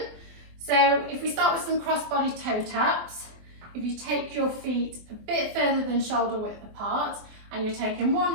So if we start with some cross-body toe taps, if you take your feet a bit further than shoulder width apart and you're taking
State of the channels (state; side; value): late; left; 24 ms